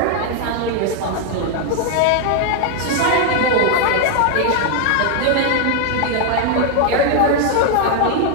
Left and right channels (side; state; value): both; different; correlation 0.00